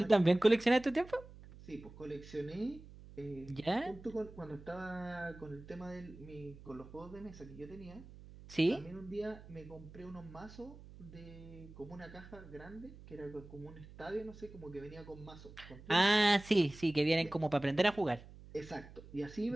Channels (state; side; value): noise; right; hum, 18 dB below the sound